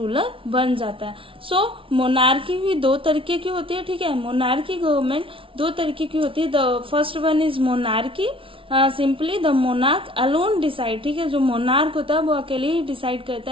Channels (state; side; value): late; left; 0.25 ms